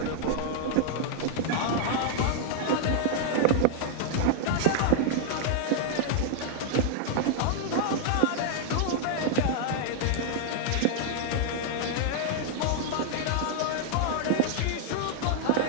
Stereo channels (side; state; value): both; different; correlation -0.01